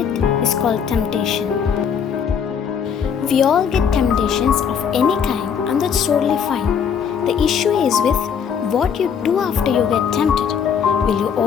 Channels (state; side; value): quieter; right; 7.3 dB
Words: is called temptation. We all get temptations of any kind, and that's totally fine. The issue is with what you do after you get tempted. Will you